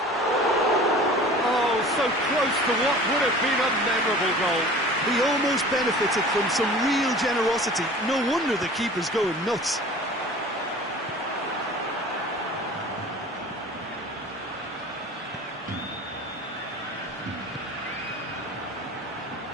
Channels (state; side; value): normal; both; correlation 0.42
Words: Oh, so close to what would have been a memorable goal. He almost benefited from some real generosity. No wonder the keeper's going nuts.